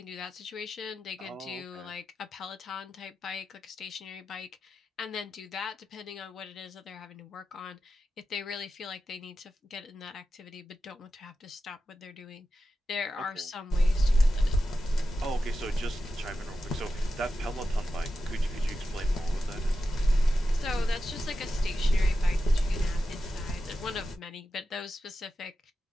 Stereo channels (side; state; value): both; normal; correlation 0.91